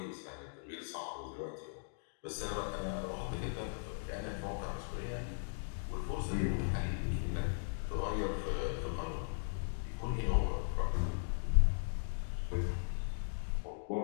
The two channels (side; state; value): right; silent; digital silence